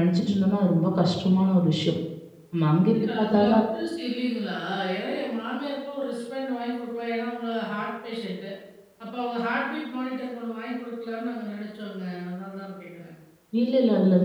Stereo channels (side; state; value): both; identical; correlation 1.00